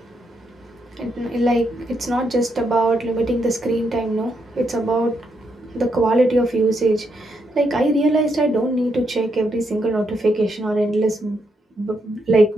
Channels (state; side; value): normal; both; correlation 0.79